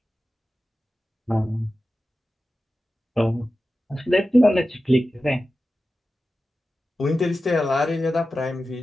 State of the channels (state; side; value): normal; both; correlation 0.93